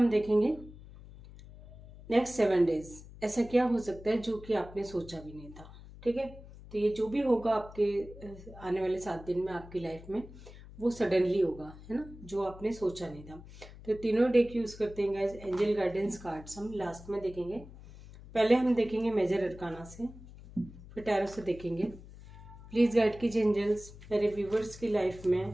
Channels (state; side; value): noise; left; hum, 17 dB below the sound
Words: देखेंगे नेक्स्ट 7 डेज ऐसा क्या हो सकता है जो कि आपने सोचा भी नहीं था। ठीक है, तो ये जो भी होगा आपके आने वाले 7 दिन में आपकी लाइफ में, वो सडनली होगा, है ना, जो आपने सोचा नहीं था। तो तीनों डेक यूज करते हैं गाइस, एंजल गाइडेंस कार्ड्स हम लास्ट में देखेंगे। पहले हम देखेंगे मेजर अरकाना से, फिर टैरो से देखेंगे। प्लीज़ गाइड कीजिए एंजल्स, मेरे व्यूवर्स की लाइफ